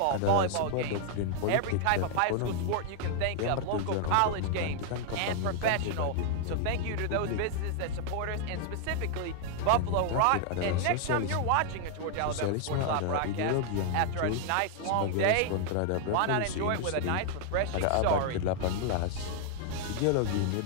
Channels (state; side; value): different; both; correlation 0.00